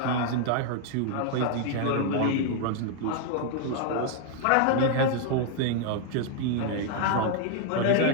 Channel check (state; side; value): different; both; correlation 0.00